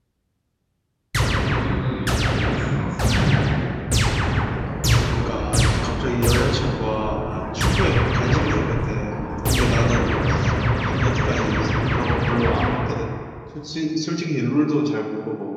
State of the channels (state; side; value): identical; both; correlation 1.00